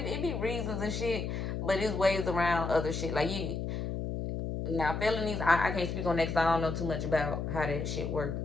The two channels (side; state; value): left; noise; hum, 3 dB below the sound